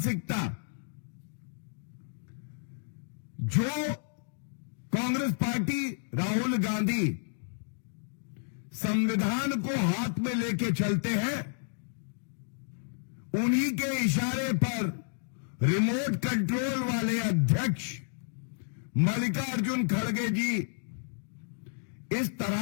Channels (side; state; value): right; silent; digital silence